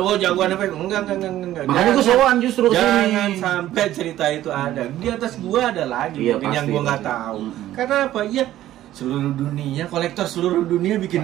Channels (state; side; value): quieter; left; 13.6 dB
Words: jagoan apa? Enggak. Makanya gue sowan justru kesini. Jangan sampai cerita itu ada. Di atas gue ada lagi yang gue nggak tahu. Karena apa? Ya seluruh dunia, kolektor seluruh dunia